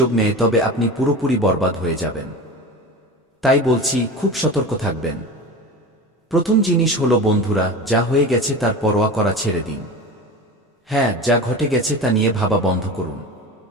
নেয় তবে আপনি পুরোপুরি বরবাদ হয়ে যাবেন। তাই বলছি, খুব সতর্ক থাকবেন। প্রথম জিনিস হলো বন্ধুরা, যা হয়ে গেছে তার পরোয়া করা ছেড়ে দিন। হ্যাঁ, যা ঘটে গেছে তা নিয়ে ভাবা বন্ধ করুন।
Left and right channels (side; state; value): both; normal; correlation 0.30